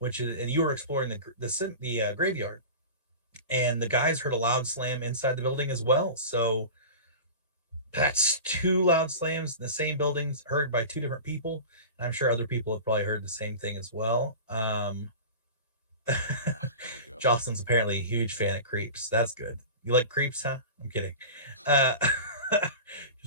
is, and you were exploring the graveyard, and the guys heard a loud slam inside the building as well. So that's two loud slams in the same buildings heard by two different people. And I'm sure other people have probably heard the same thing as well. Jocelyn's apparently a huge fan of Creeps. That's good. You like Creeps, huh? I'm kidding.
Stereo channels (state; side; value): inverted; both; correlation -0.32